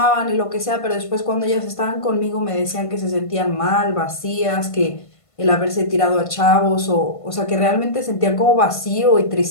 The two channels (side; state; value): right; late; 1.5 ms